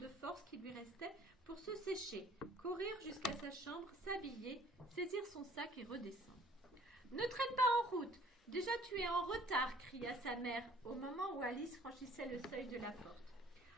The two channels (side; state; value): both; normal; correlation 0.54